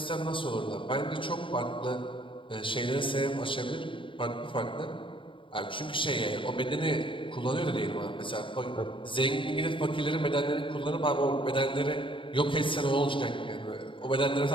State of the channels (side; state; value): right; late; 0.25 ms